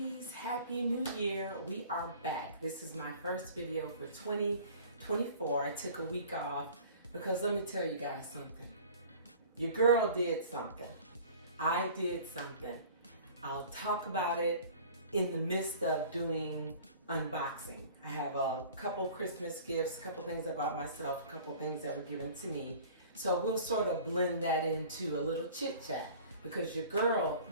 happy new year. We are back. This is my first video for 2024. I took a week off because let me tell you guys something. Your girl did something. I did something. I'll talk about it in the midst of doing unboxing. I have a couple Christmas gifts, a couple things I bought myself, a couple things that were given to me. So we'll sort of blend that into a little chit chat because your girl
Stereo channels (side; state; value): both; inverted; correlation -0.45